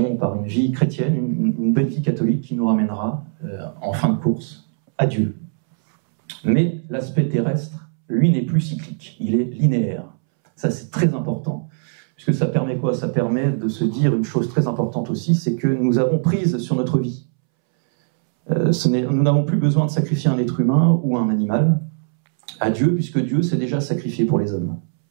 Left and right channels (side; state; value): left; silent; 65 dB below the other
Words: par une vie chrétienne, une belle vie catholique qui nous ramènera en fin de course à Dieu. Mais l'aspect terrestre, lui, n'est plus cyclique, il est linéaire. Ça, c'est très important, puisque ça permet quoi ? Ça permet de se dire une chose très importante aussi, c'est que nous avons prise sur notre vie. Nous n'avons plus besoin de sacrifier un être humain ou un animal à Dieu, puisque Dieu s'est déjà sacrifié pour les hommes.